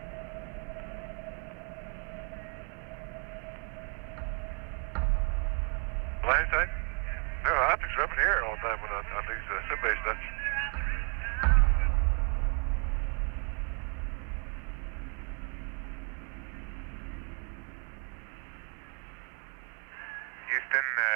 Landing side? No, optics are up in the air all the time on these sim-based stuff. Houston,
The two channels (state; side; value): quieter; left; 39.9 dB